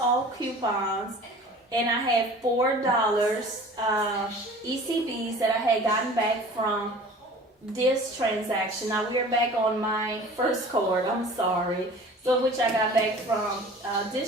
coupons, and I had $4 ECBs that I had gotten back from this transaction. Now we are back on my first card, I'm sorry. So which I got back from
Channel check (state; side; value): normal; both; correlation 0.44